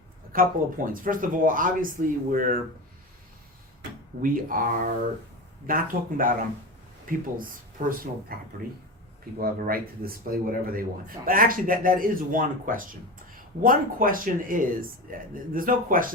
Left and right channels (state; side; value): normal; both; correlation 0.25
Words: couple of points. First of all, obviously we are not talking about people's personal property. People have a right to display whatever they want. But actually, that is one question. One question is, there's no